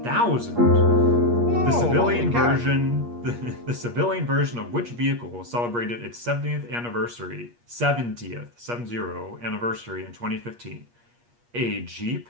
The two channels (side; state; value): left; late; 8.4 ms